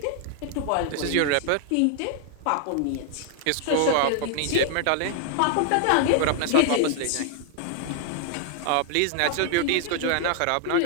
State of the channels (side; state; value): both; different; correlation 0.00